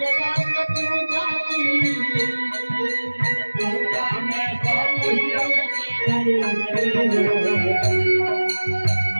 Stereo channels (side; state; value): both; inverted; correlation -1.00